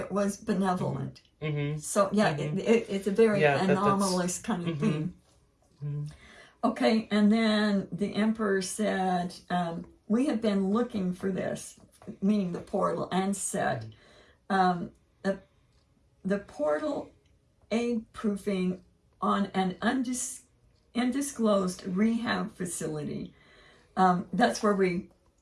was benevolent. Mm-hmm. So, yeah, it's a very anomalous kind of thing. Mm-hmm. Okay, and then the Emperor said, we have been looking for this, meaning the portal, and said, the portal egg proofing on an undisclosed rehab facility.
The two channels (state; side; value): identical; both; correlation 1.00